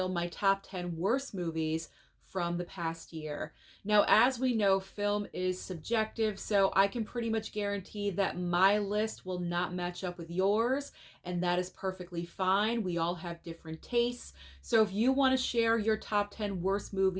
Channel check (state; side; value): identical; both; correlation 1.00